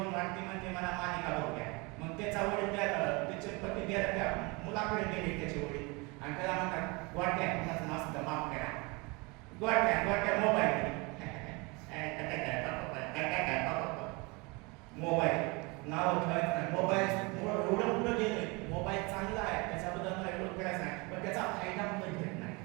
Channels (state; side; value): quieter; left; 27.5 dB